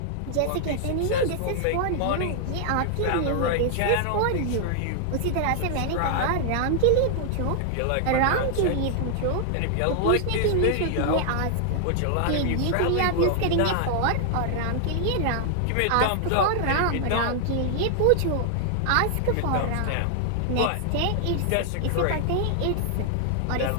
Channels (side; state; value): both; different; correlation 0.00